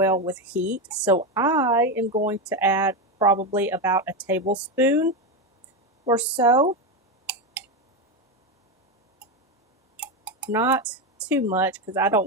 with heat. So I am going to add probably about a tablespoon or so. Not too much because I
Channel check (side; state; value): both; normal; correlation 0.12